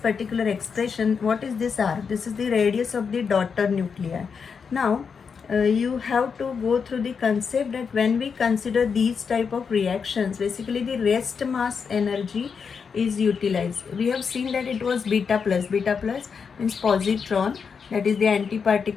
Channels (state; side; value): quieter; right; 6.0 dB